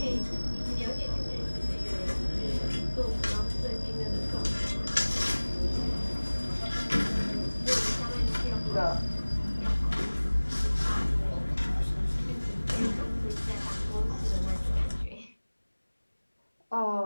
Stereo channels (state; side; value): inverted; both; correlation -1.00